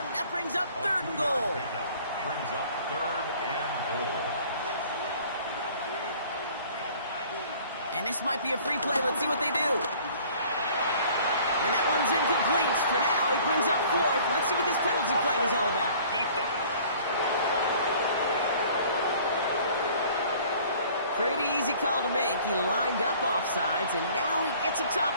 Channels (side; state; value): both; inverted; correlation -0.51